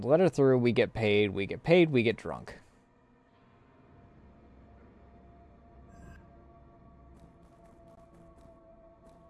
Let her through. We get paid. We get paid. We get drunk.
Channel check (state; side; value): identical; both; correlation 1.00